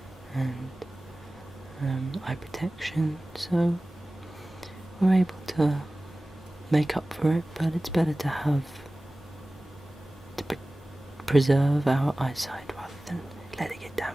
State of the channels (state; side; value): normal; both; correlation 0.97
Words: and eye protection, so we're able to make up for it, but it's better to preserve our eyesight rather than let it get